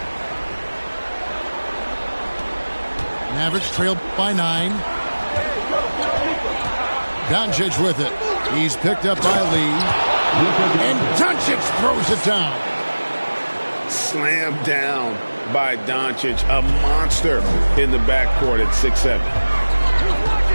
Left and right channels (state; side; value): inverted; both; correlation -1.00